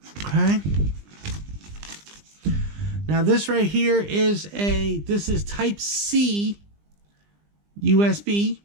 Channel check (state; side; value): late; left; 20 ms